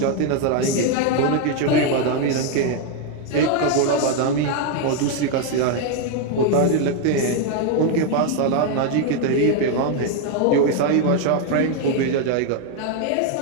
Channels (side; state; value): both; different; correlation 0.01